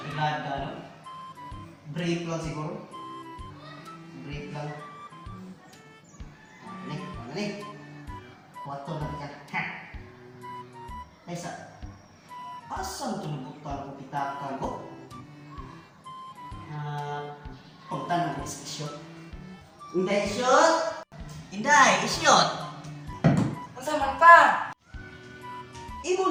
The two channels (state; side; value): identical; both; correlation 1.00